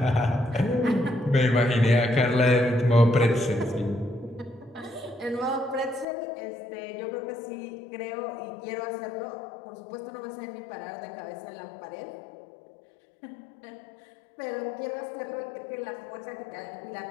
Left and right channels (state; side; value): drops out; right; at 6.1 s